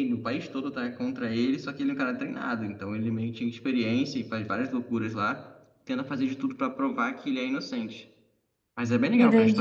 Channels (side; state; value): both; identical; correlation 1.00